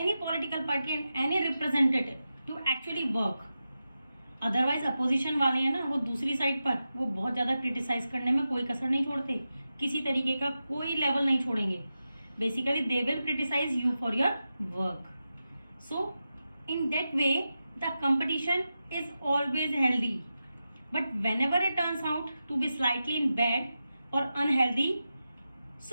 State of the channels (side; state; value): both; inverted; correlation -0.91